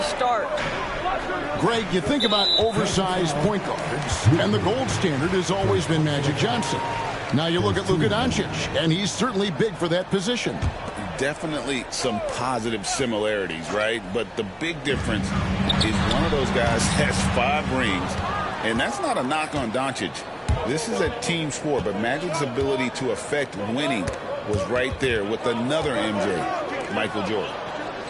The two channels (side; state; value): both; identical; correlation 1.00